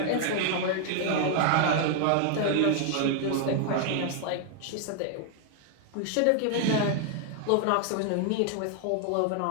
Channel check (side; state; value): both; different; correlation 0.00